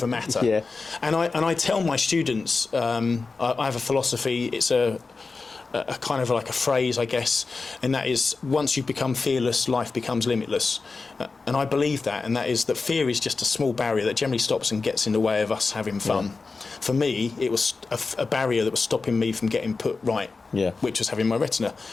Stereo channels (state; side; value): quieter; right; 4.2 dB